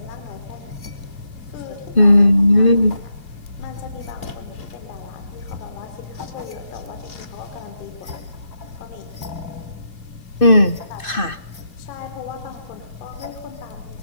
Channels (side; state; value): right; late; 2.6 ms